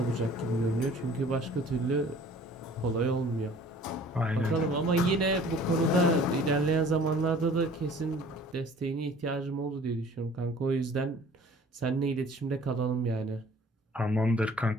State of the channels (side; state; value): both; normal; correlation 0.50